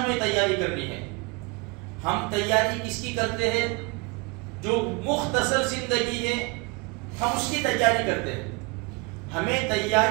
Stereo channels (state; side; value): quieter; left; 27.2 dB